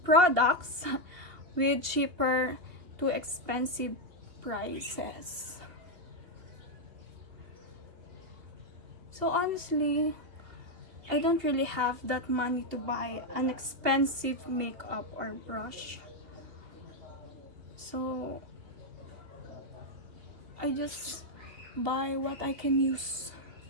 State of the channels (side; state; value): left; late; 3.0 ms